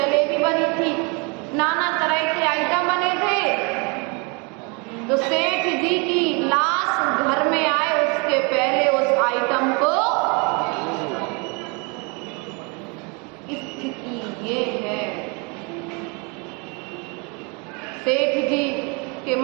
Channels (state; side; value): quieter; left; 31.8 dB